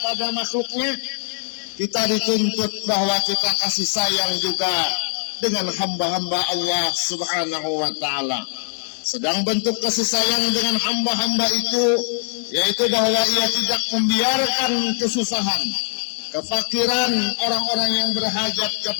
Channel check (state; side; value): silent; right; digital silence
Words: makhluknya, kita dituntut bahwa kita kasih sayang juga dengan hamba-hamba Allah Subhanahu wa taala. Sedang bentuk kasih sayang dengan hamba-hamba itu yaitu bahwa ia tidak membiarkan kesusahan, kefakiran orang-orang yang berhajat